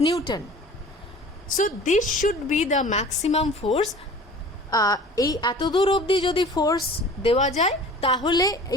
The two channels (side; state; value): both; normal; correlation 0.44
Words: Newton. So this should be the maximum force. এই এত দূর অবধি যদি ফোর্স দেওয়া যায় তাহলে